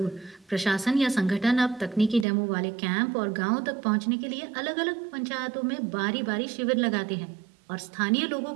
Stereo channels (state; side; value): drops out; left; at 2.2 s